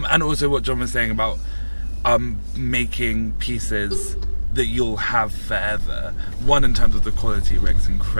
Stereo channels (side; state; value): both; inverted; correlation -1.00